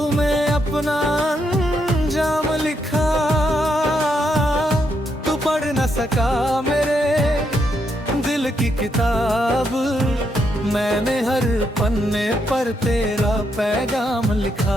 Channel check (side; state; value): both; normal; correlation 0.78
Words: में अपना अंजाम लिखा। तू पढ़ न सका मेरे दिल की किताब, मैंने हर पन्ने पर तेरा पैगाम